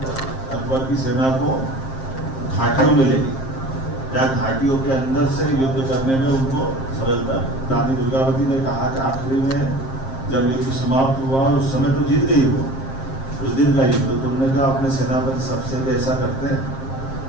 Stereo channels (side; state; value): right; late; 7.5 ms